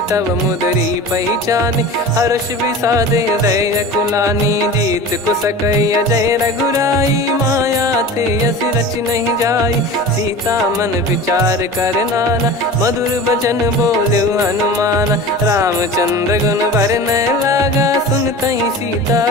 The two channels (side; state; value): both; normal; correlation 0.35